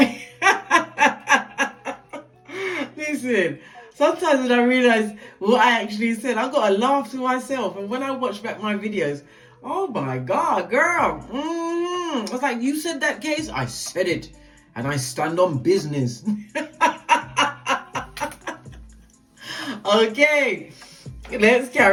listen. Sometimes when I realize what I actually said, I got to laugh to myself. And when I watch back my videos, oh my God, girl. I was like, you said that, Case? I said it. And I stand on business. Okay, let's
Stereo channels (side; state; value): both; identical; correlation 1.00